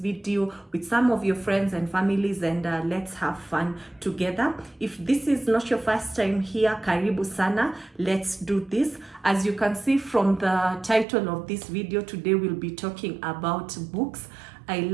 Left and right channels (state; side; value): drops out; left; at 11.1 s